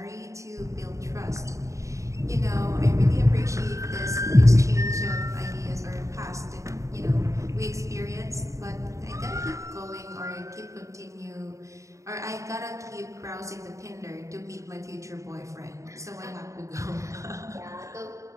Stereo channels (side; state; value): left; late; 0.15 ms